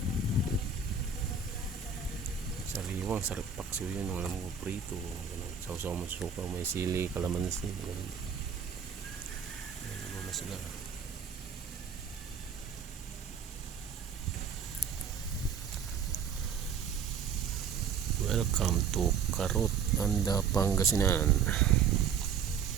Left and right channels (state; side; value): quieter; left; 6.6 dB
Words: Sariwang, sarap paksiw yun. Yung alam ko, prito. Sausaw mo suka, may sili, kalamansi. Ganun. Ganun muna sila. Welcome to Carot, Anda, Pangasinan.